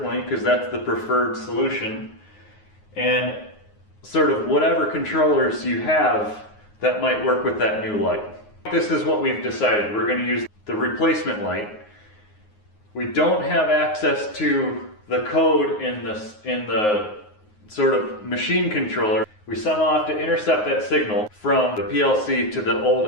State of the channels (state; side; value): late; right; 9.5 ms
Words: because that's the preferred solution, and sort of whatever controllers you have that might work with that new light. This is what we've decided. We're going to use the replacement light. We don't have access to the code in the sort of machine controller. We somehow have to intercept that signal from the PLC to the old